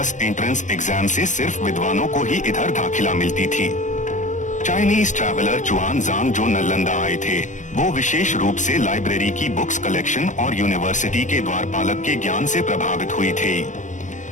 एंट्रेंस एग्जाम से सिर्फ विद्वानों को ही इधर दाखिला मिलती थी। चाइनीज ट्रैवलर जुआन जांग जो नालंदा आए थे, वो विशेष रूप से लाइब्रेरी की बुक्स कलेक्शन और यूनिवर्सिटी के द्वारपालक के ज्ञान से प्रभावित हुई थे।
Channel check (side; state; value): right; late; 0.36 ms